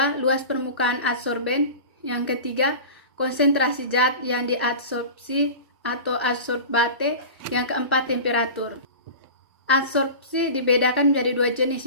luas permukaan adsorben. Yang ketiga, konsentrasi zat yang diadsorpsi atau adsorbate. Yang keempat, temperatur. Adsorpsi dibedakan menjadi dua jenis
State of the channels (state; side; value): inverted; both; correlation -0.33